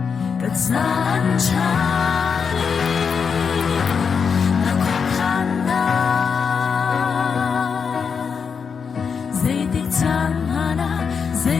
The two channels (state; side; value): quieter; right; 6.1 dB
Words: saan chali nakukhanda zay tiktan hana